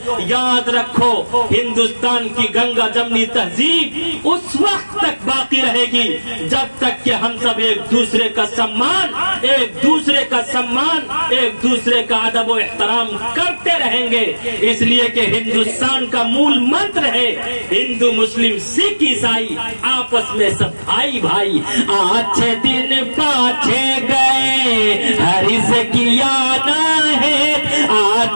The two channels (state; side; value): inverted; both; correlation -1.00